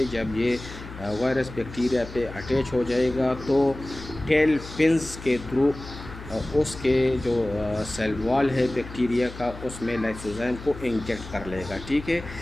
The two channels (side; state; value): left; noise; hum, 13 dB below the sound